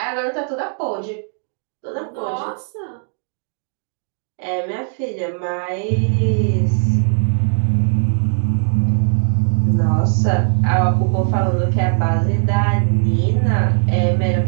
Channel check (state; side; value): silent; left; 57 dB below the other